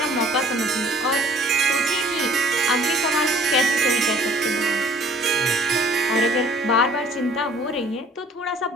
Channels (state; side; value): normal; both; correlation 0.54